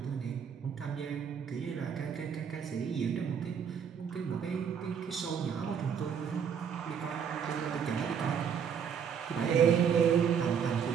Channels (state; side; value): quieter; left; 7.5 dB